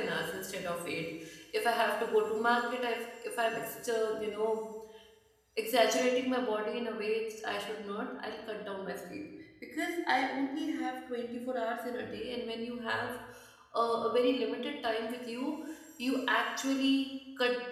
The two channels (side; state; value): both; identical; correlation 1.00